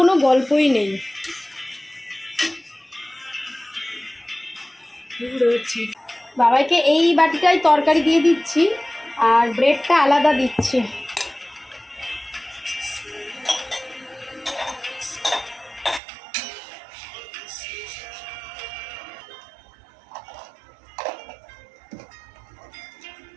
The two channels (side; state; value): left; drops out; at 16.0 s